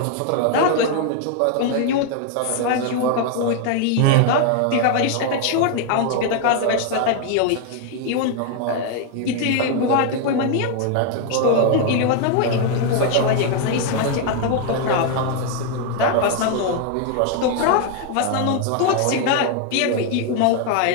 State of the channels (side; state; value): both; different; correlation 0.00